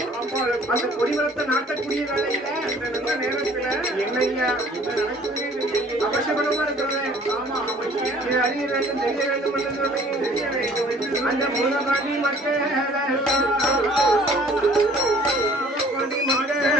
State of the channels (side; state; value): both; normal; correlation 0.54